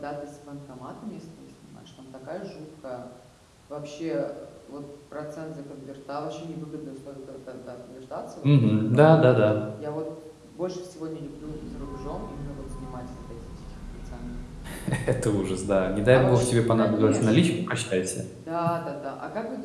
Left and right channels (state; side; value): identical; both; correlation 1.00